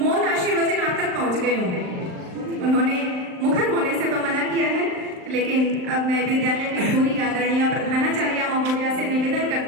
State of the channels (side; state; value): left; late; 39 ms